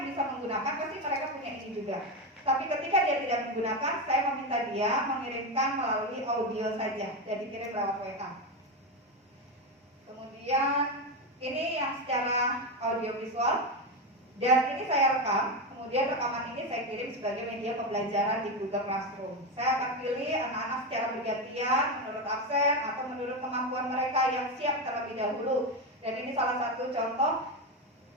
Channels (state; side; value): normal; both; correlation 0.13